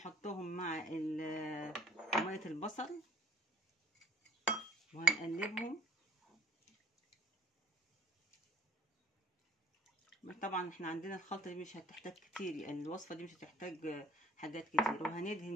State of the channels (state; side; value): normal; both; correlation 0.58